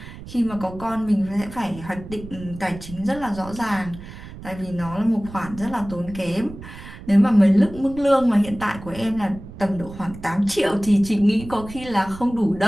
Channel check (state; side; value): noise; right; rumble, 14 dB below the sound